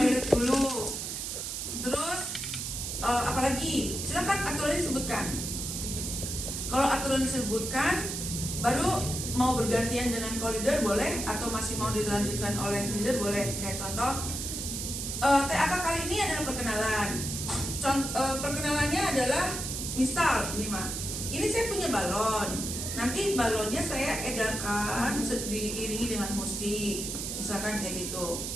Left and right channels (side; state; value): right; noise; hiss, 4 dB below the sound